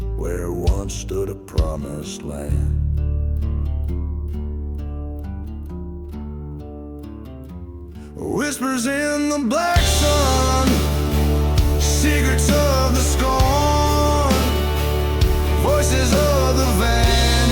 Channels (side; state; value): both; identical; correlation 1.00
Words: where once stood a promised land. Whispers in the black sun, secrets of the scorn, voices of the